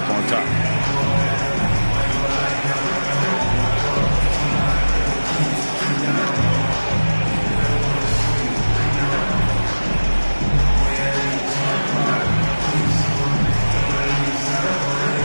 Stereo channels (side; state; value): both; inverted; correlation -1.00